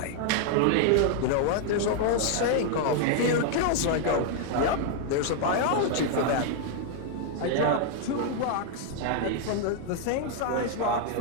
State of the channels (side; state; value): both; different; correlation 0.00